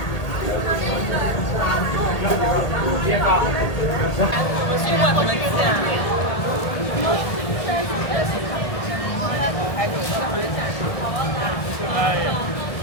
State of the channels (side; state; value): right; late; 1.8 ms